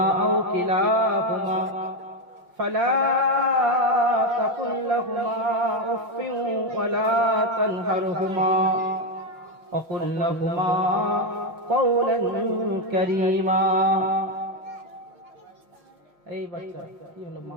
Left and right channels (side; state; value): left; late; 5.7 ms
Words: আও কিলাহুমা ফালা تقل لهما أف ولا تنهرهما وقل لهما قولا كريما. এই বাচ্চা কি হলো মা?